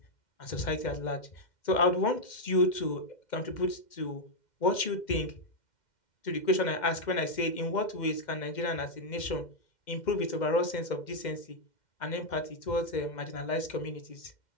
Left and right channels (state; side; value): late; right; 2.1 ms